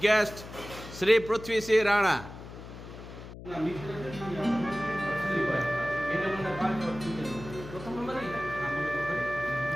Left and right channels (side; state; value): left; noise; hum, 13 dB below the sound